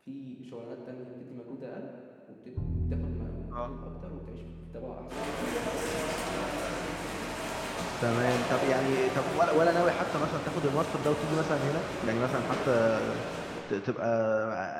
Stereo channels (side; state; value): both; identical; correlation 1.00